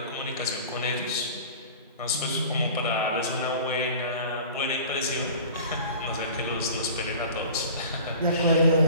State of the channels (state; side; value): inverted; both; correlation -0.40